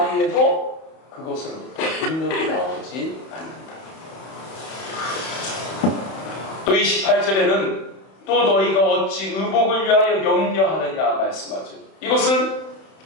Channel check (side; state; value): right; late; 31 ms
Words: 해도 그것으로부터 능력이 나오지 않는다. 또 28절에는 또 너희가 어찌 의복을 위하여 염려하느냐 말씀하죠. 이것은